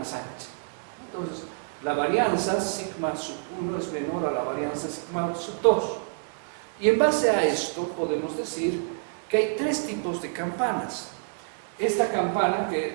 ancha. Entonces, La varianza sigma sub 1 es menor a la varianza sigma sub 2. Y en base a esto podemos decir que hay tres tipos de campanas. Esta campana,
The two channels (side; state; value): left; silent; 60 dB below the other